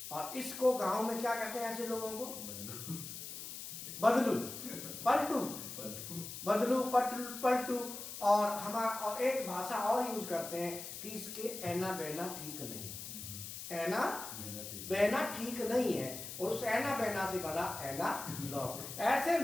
और इसको गांव में क्या कहते हैं ऐसे लोगों को, बदलू पलटू, बदलू पलटू। और एक भाषा और यूज करते हैं कि इसके ऐना बहना ठीक नहीं है, ऐना बहना ठीक नहीं है, और उस ऐना बहना से बना ऐना लॉग। ऐसे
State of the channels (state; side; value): noise; left; hiss, 9 dB below the sound